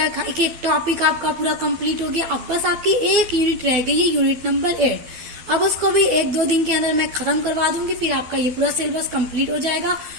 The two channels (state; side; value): late; left; 12 ms